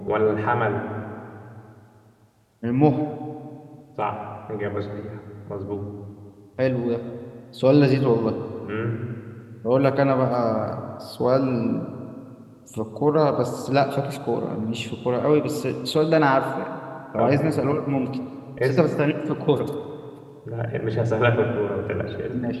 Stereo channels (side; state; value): both; identical; correlation 1.00